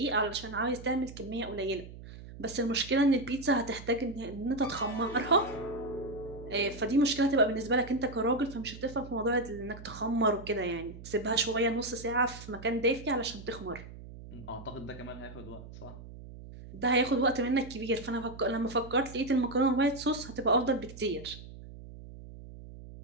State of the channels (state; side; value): noise; right; hum, 15 dB below the sound